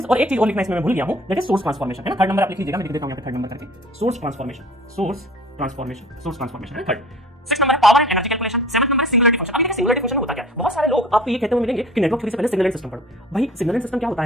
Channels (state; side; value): normal; both; correlation 0.47